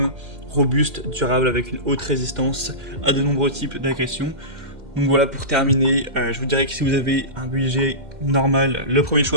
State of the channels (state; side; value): late; left; 2.1 ms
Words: robuste, durable, avec une haute résistance à de nombreux types d'agressions. Donc voilà, pour terminer, je vous dirais que si vous avez un budget normal, le premier